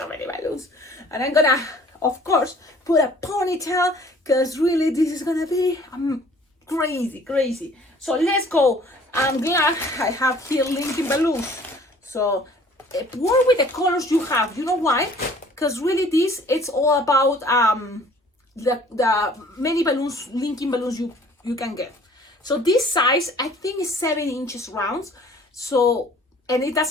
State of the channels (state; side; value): normal; both; correlation 0.53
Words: many balloons. And I'm gonna, of course, put a ponytail, because really this is gonna be crazy, crazy. So let's go. I'm glad I have here linking balloons. So work with the colors you have. You know why? Because really this, it's all about the many balloons, linking balloons you can get. So this size, I think, is 7 inches rounds. So, and it